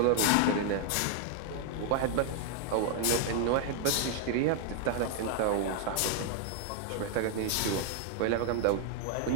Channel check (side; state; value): both; different; correlation 0.00